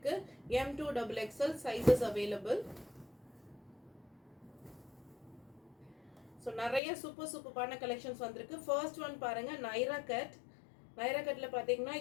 M2 XXL sizes available. So நிறைய சூப்பர்பான கலெக்ஷன்ஸ் வந்திருக்கு. ஃபர்ஸ்ட் ஒன் பாருங்க, நைரா கட்ல பாத்தீங்கன்னா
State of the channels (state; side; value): drops out; right; at 6.8 s